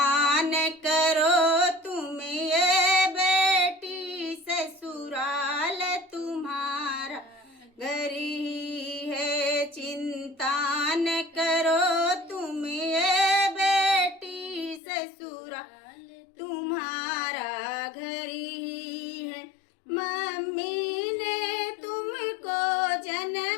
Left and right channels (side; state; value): right; drops out; at 14.8 s